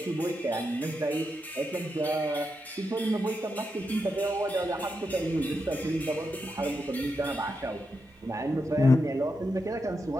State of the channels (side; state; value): both; normal; correlation 0.85